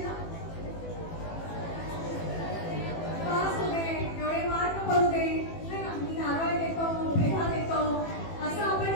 पास होते, एवढे मार्क पडू दे, मी नारळ देतो, पेढा देतो, असं आपण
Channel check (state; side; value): late; right; 18 ms